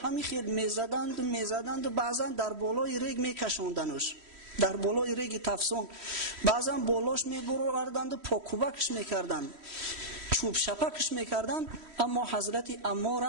خیل میزدند و بعضا در بالای ریگ میکشاندنش، در بالای ریگ تفسون. بعضا بالاش میبردند و پاکوبکش میکردند، چوب شپکش میکردن. اما حضرت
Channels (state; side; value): late; left; 3.1 ms